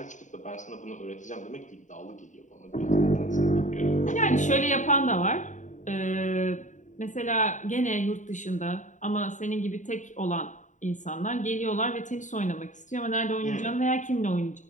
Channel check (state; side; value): late; right; 0.36 ms